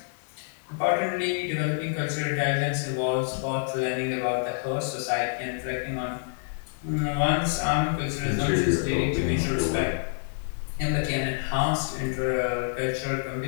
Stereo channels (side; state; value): right; silent; digital silence